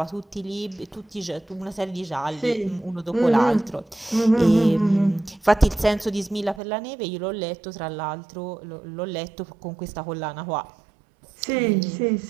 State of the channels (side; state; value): left; drops out; at 6.6 s